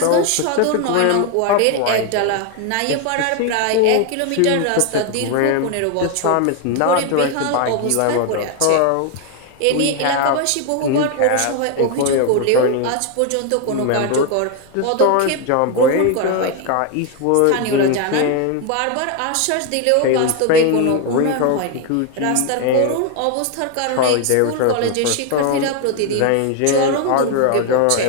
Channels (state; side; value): different; both; correlation 0.01